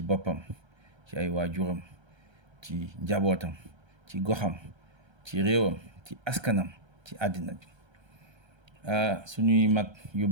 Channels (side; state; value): left; late; 1.3 ms